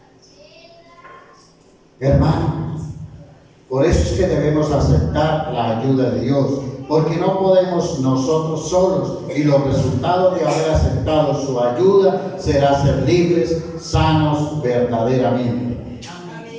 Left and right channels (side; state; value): both; identical; correlation 1.00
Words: Hermano, por eso es que debemos aceptar la ayuda de Dios, porque no podemos nosotros solos, y los resultados de haber aceptado su ayuda será ser libres, sanos verdaderamente.